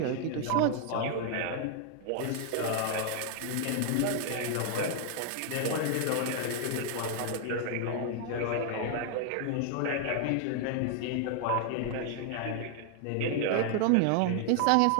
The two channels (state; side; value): different; both; correlation 0.00